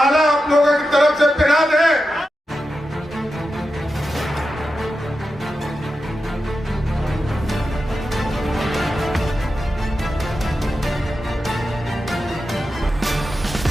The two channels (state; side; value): normal; both; correlation 0.90